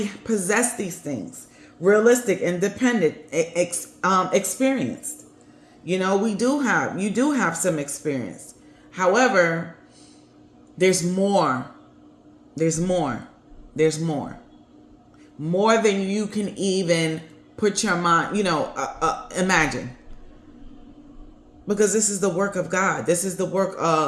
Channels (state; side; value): identical; both; correlation 1.00